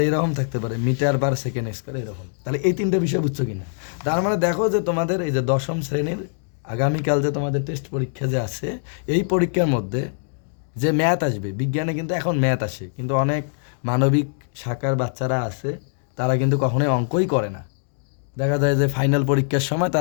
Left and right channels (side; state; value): right; silent; digital silence